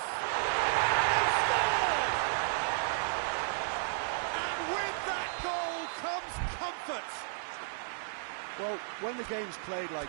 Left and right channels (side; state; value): left; silent; 56 dB below the other